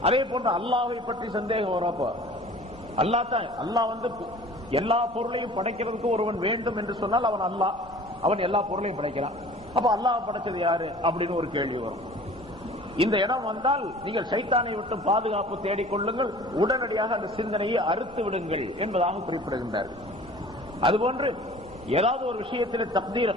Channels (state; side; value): normal; both; correlation 0.46